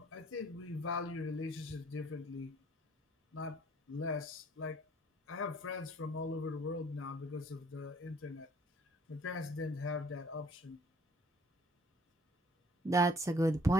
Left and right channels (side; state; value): both; normal; correlation 0.59